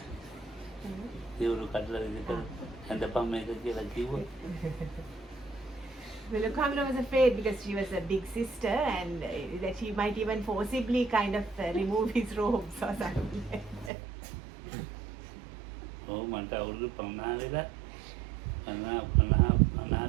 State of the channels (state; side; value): drops out; left; at 13.9 s